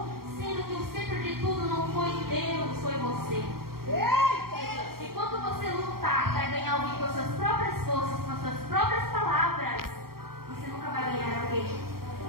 sendo que o centro de tudo não foi Deus, foi você. E quando você lutar para ganhar alguém com as suas próprias forças, com as suas próprias palavras, você nunca vai ganhar alguém.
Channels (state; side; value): late; left; 0.93 ms